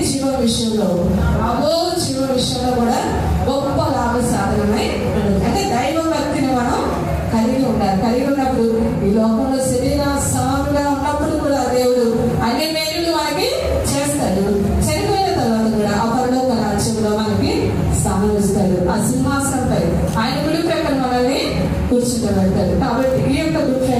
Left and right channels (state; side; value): identical; both; correlation 1.00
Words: జీవ విషయంలో, అగో జీవ విషయంలో కూడా గొప్ప లాభ సాధనమై ఉంటుంది. అంటే దైవభక్తిని మనం ఆ సింహాసనంపై ఆయన కుడి ప్రక్కన మనల్ని కూర్చుంటబెడతాడు. కాబట్టి ఈ యొక్క గుడ్